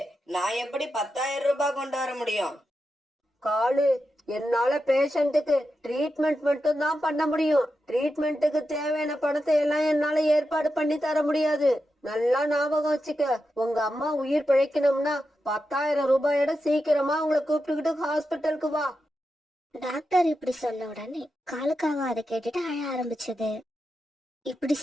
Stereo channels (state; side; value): normal; both; correlation 0.89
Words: நான் எப்படி 10,000 ரூபாய் கொண்டு வர முடியும்? காலு, என்னால பேஷண்ட்டுக்கு ட்ரீட்மெண்ட் மட்டும் தான் பண்ண முடியும், ட்ரீட்மெண்ட்டுக்கு தேவையான பணத்தை எல்லாம் என்னால ஏற்பாடு பண்ணி தர முடியாது. நல்லா ஞாபகம் வச்சுக்க, உங்க அம்மா உயிர் பிழைக்கணும்னா 10,000 ரூபாயோட சீக்கிரமா உங்களை கூப்பிட்டுக்கிட்டு ஹாஸ்பிட்டலுக்கு வா. டாக்டர் இப்படி சொன்ன உடனே காலுக்காக அதை கேட்டுட்டு அழ ஆரம்பிச்சது. இப்படி